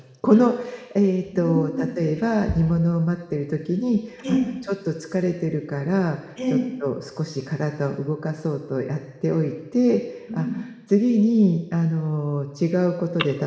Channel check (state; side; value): identical; both; correlation 1.00